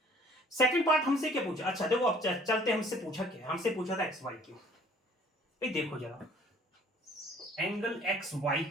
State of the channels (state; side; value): normal; both; correlation 0.55